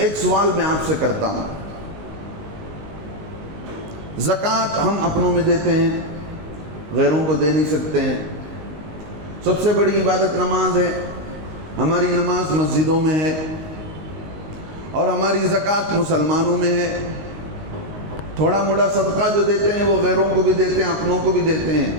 سوال میں آپ سے کرتا ہوں، زکوٰۃ ہم اپنوں میں دیتے ہیں، غیروں کو دے نہیں سکتے ہیں۔ سب سے بڑی عبادت نماز ہے، ہماری نماز مسجدوں میں ہے، اور ہماری زکوٰۃ مسلمانوں میں ہے۔ تھوڑا موڑا صدقہ جو دیتے ہیں وہ غیروں کو بھی دیتے ہیں، اپنوں کو بھی دیتے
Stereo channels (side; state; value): left; late; 19 ms